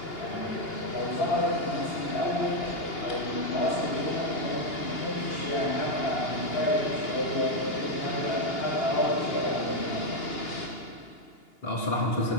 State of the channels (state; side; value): late; right; 2.8 ms